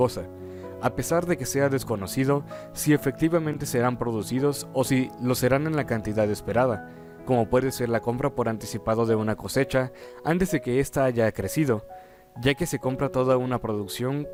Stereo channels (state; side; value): identical; both; correlation 1.00